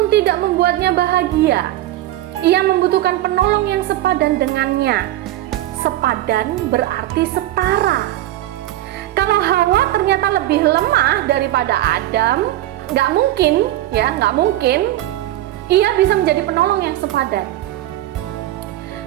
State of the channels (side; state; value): left; quieter; 14.7 dB